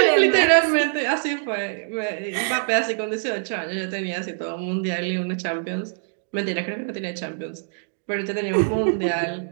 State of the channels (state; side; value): silent; left; digital silence